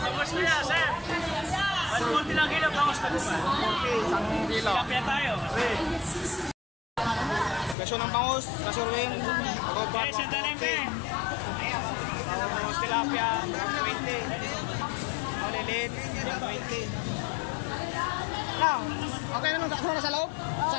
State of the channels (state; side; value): drops out; right; at 7.8 s